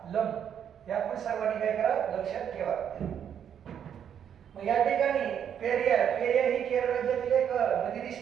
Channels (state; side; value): quieter; left; 8.7 dB